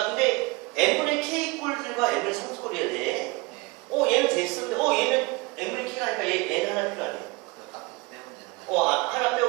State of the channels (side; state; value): left; quieter; 24.6 dB